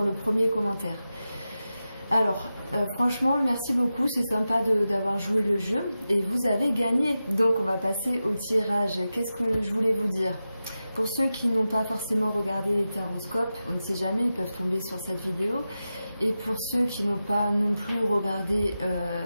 le premier commentaire. Alors, franchement, merci beaucoup, c'est sympa d'avoir joué le jeu et vous avez gagné. Donc on va passer au tirage. Qu'est-ce que je voulais vous dire? Pour ceux qui n'ont pas forcément regardé les taroscopes, on ne sait jamais, ils peuvent tomber sur cette vidéo. Et pour ceux qui n'ont pas non plus regardé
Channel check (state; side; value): inverted; both; correlation -0.92